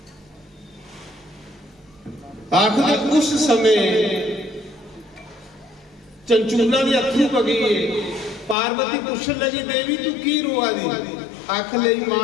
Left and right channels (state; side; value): drops out; right; at 8.6 s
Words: आखिर उस समय चंचूला के अथरू पगी, पार्वती पूछन लगी देवी तू की रोआ दी? आख लई